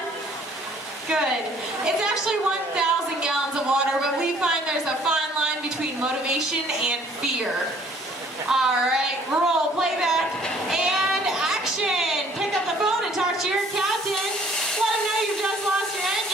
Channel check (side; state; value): both; normal; correlation 0.58